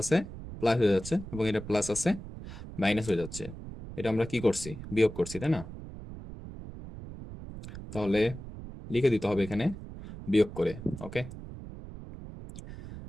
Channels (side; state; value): right; noise; rumble, 12 dB below the sound